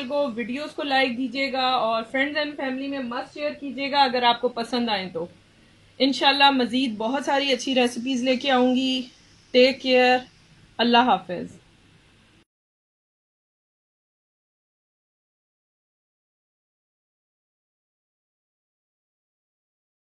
को, वीडियोस को लाइक दीजिएगा और फ्रेंड्स एंड फैमिली में मस्ट शेयर कीजिएगा अगर आपको पसंद आए तो। इंशाल्लाह मज़ीद बहुत सारी अच्छी रेसिपीज़ लेके आऊँगी। टेक केयर, अल्लाह हाफिज़।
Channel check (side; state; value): both; identical; correlation 1.00